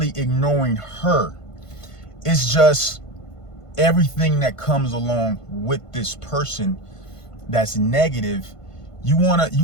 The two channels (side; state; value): right; late; 1.5 ms